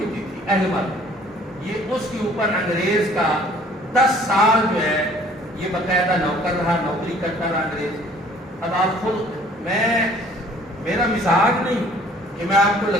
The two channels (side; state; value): both; normal; correlation 0.55